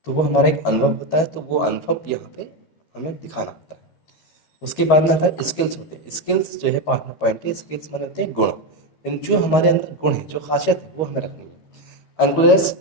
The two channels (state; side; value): late; right; 13 ms